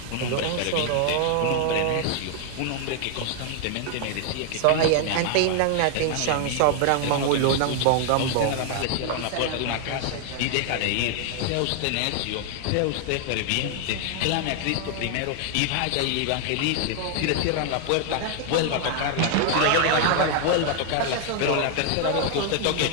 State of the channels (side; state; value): both; different; correlation 0.00